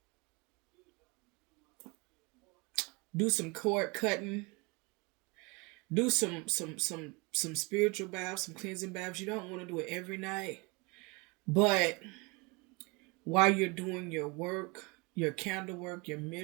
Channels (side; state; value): left; quieter; 28.0 dB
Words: Do some cord cutting. Do some spiritual baths, some cleansing baths. You don't want to do it every night, but while you're doing your work, your candle work, your